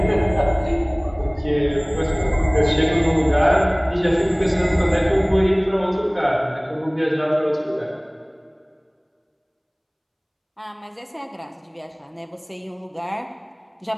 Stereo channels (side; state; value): both; identical; correlation 1.00